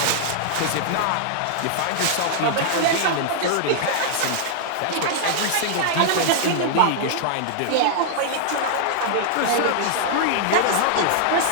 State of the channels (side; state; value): both; different; correlation -0.01